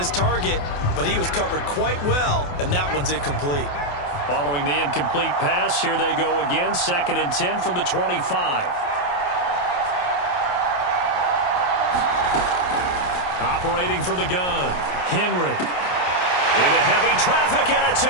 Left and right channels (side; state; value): right; late; 28 ms